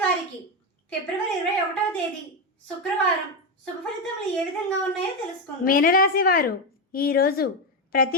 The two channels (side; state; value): both; normal; correlation 0.10